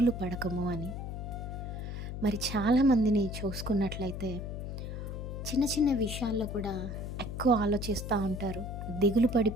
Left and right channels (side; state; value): left; noise; hum, 6 dB below the sound